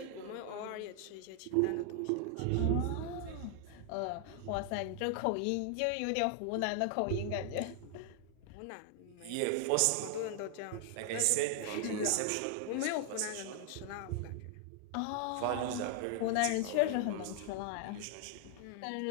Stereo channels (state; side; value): different; both; correlation 0.00